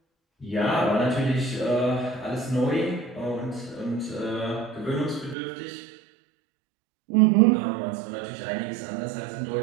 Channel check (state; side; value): drops out; left; at 5.4 s